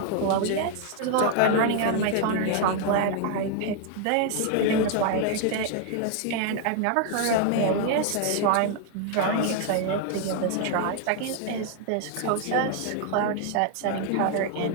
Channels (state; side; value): different; both; correlation 0.00